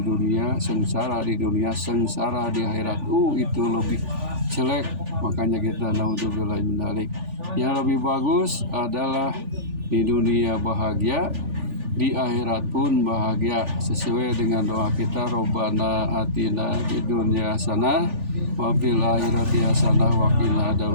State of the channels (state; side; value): late; left; 3.4 ms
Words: sengsara di dunia, sengsara di akhirat, itu lebih jelek. Makanya kita naudzubillahi min dzalik. Yang lebih bagus adalah di dunia bahagia, di akhirat pun bahagia, sesuai dengan doa kita, Robbana atina fid dunya hasanah wa fil akhirati hasanah wa qina